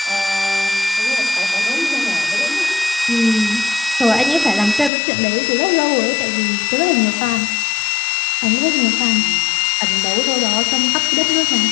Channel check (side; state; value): right; drops out; at 4.9 s